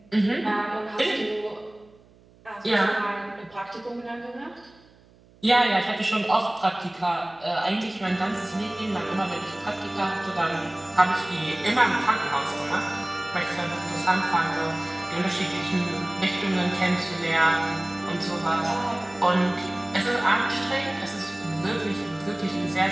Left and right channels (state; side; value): noise; right; hum, 28 dB below the sound